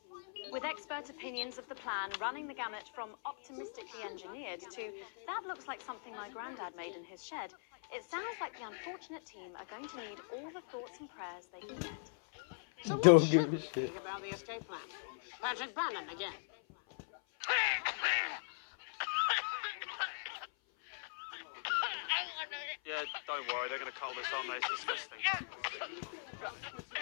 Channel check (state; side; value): silent; right; 51 dB below the other